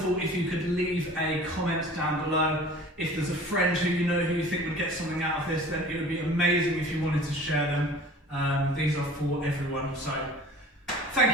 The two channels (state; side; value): normal; both; correlation 0.44